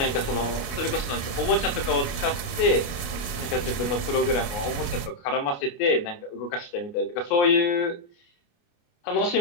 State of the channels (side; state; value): right; late; 29 ms